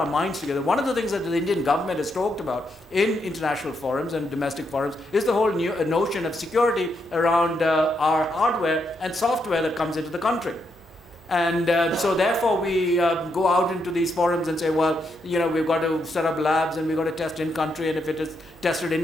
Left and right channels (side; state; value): both; normal; correlation 0.79